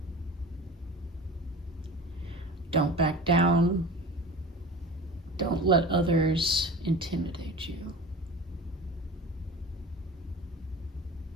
Don't back down. Don't let others intimidate you.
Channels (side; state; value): both; normal; correlation 0.36